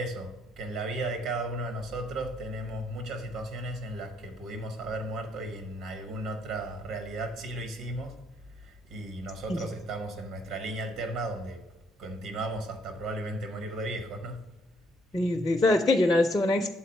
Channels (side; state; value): both; normal; correlation 0.70